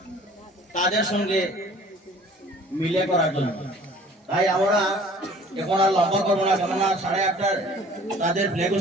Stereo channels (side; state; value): both; normal; correlation 0.51